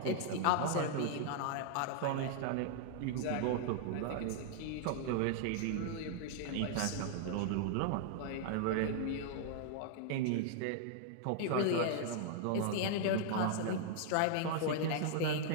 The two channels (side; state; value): both; different; correlation -0.01